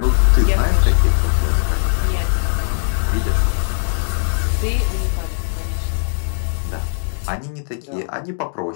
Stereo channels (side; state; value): right; silent; digital silence